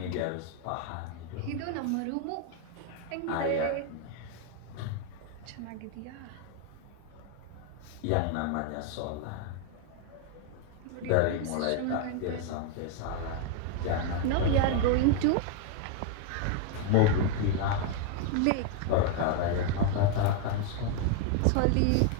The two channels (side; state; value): both; different; correlation 0.01